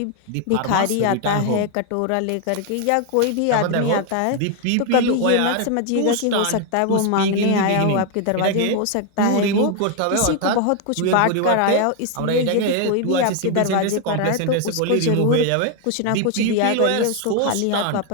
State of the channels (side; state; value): both; different; correlation 0.01